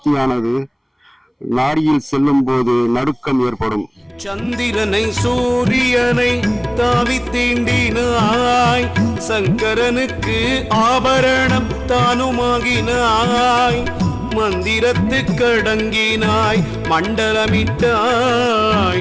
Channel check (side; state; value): both; identical; correlation 1.00